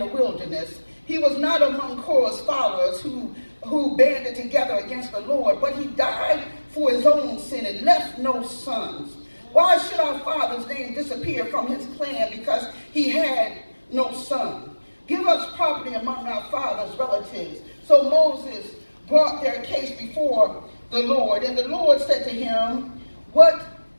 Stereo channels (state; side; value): inverted; both; correlation -1.00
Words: wilderness. He was not among Korah's followers who banded together against the Lord, but he died for his own sin and left no sons. Why should our father's name disappear from his clan because he had no son? Give us property among our father's relatives. So Moses brought their case before the Lord, and the Lord said to him, What